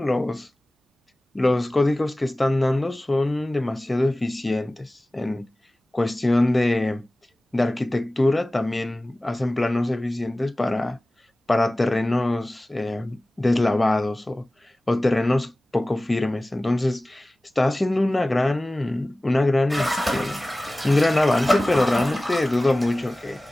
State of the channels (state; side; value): normal; both; correlation 0.98